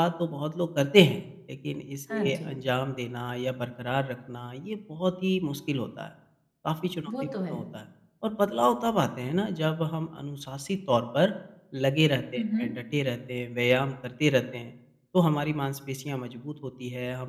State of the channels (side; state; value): both; identical; correlation 1.00